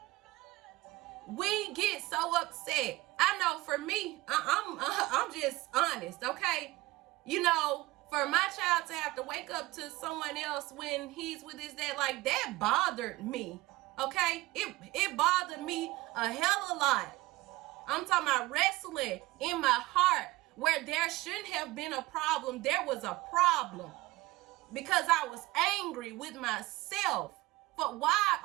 We get so upset. I know for me, I'm just honest, okay? You know, for my child to have to wake up to someone else when he's with his dad, like, that bothered me, okay? It bothered me a hell of a lot. I'm talking about wrestling in my heart where there shouldn't have been a problem. There was a problem because I was angry with myself. But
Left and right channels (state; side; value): quieter; left; 19.8 dB